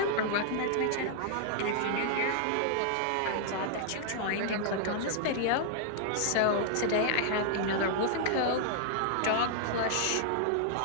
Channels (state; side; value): different; both; correlation -0.01